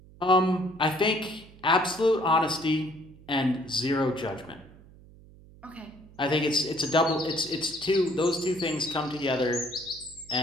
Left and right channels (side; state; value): right; noise; hum, 22 dB below the sound